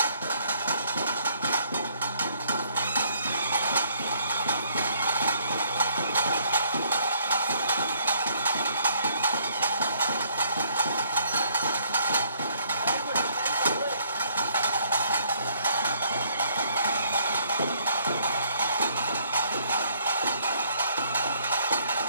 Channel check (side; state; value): both; inverted; correlation -0.65